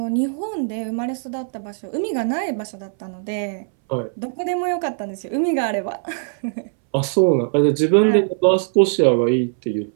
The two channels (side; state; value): left; silent; 63 dB below the other